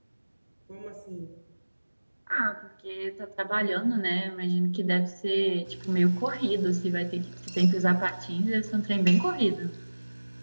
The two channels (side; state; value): both; inverted; correlation -1.00